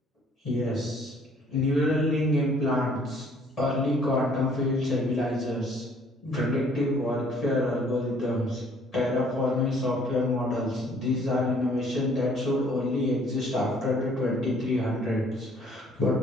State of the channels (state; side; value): normal; both; correlation 0.60